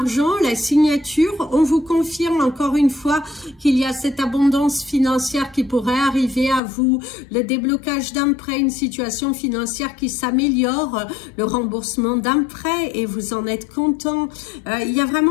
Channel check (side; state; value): right; drops out; at 6.6 s